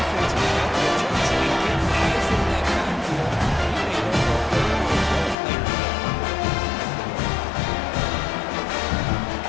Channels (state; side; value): drops out; right; at 5.4 s